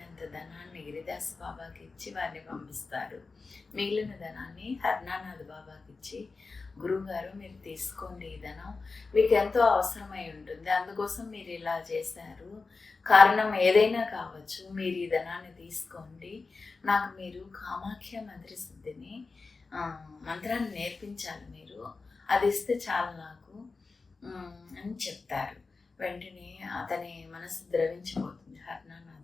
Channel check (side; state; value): right; quieter; 4.1 dB